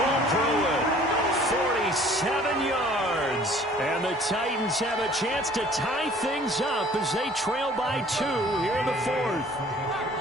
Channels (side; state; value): both; normal; correlation 0.53